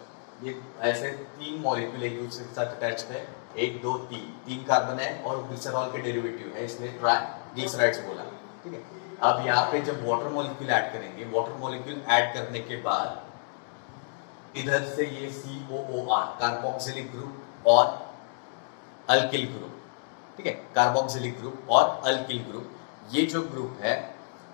ये ऐसे 3 मॉलिक्यूल एक दूसरे के साथ अटैच है, 1 2 3 कार्बन है और ग्लिसरॉल के डेरिवेटिव है, इसलिए ट्राइग्लिसराइड्स बोला। ठीक है, अब यहाँ पे जब वाटर मॉलिक्यूल ऐड करेंगे, वाटर मॉलिक्यूल ऐड करने के बाद इधर से ये COOR, कार्बोक्सिलिक ग्रुप और अल्किल ग्रुप, ठीक है, कार्बोक्सिलिक ग्रुप और अल्किल ग्रुप, ये जो ग्रुप है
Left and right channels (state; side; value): silent; right; digital silence